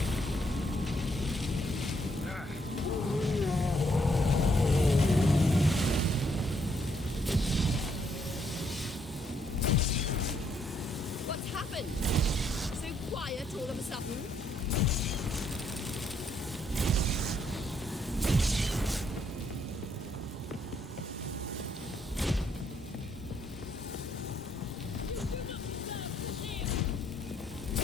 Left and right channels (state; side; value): normal; both; correlation 0.72